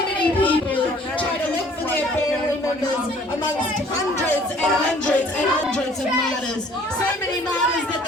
people try to look for their family members amongst hundreds and hundreds and hundreds of martyrs. So many martyrs that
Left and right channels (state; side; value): normal; both; correlation 0.55